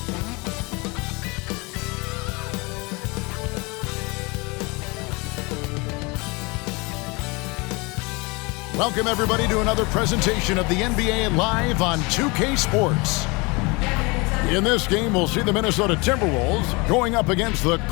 Welcome, everybody, to another presentation of the NBA Live on 2K Sports. In this game, we'll see the Minnesota Timberwolves going up against the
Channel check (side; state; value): right; quieter; 26.9 dB